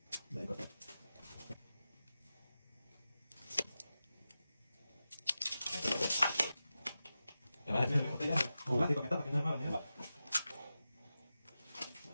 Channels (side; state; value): both; inverted; correlation -0.93